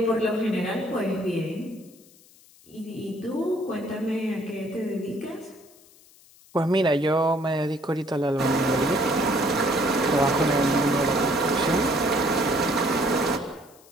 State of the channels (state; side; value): noise; left; hiss, 26 dB below the sound